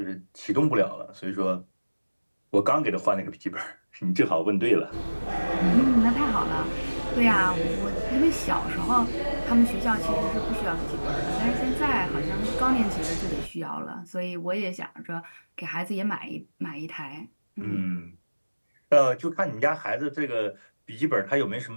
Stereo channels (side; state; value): both; inverted; correlation -1.00